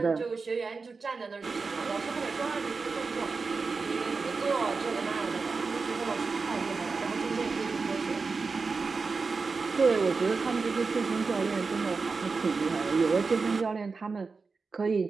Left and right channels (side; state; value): left; quieter; 4.5 dB